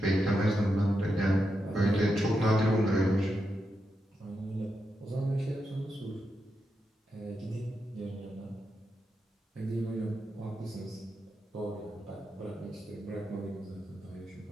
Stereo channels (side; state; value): both; normal; correlation 0.86